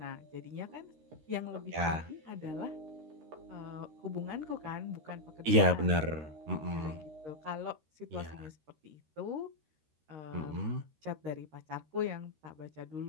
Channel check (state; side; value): late; left; 13 ms